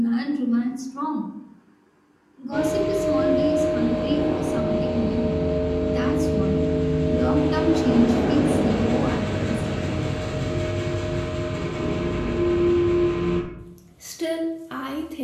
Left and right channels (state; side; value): identical; both; correlation 1.00